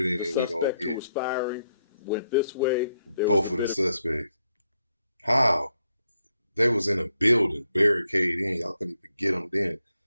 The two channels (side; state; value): both; inverted; correlation -0.79